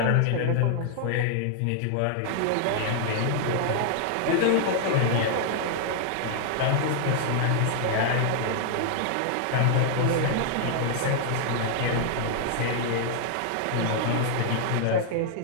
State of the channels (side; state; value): both; different; correlation -0.01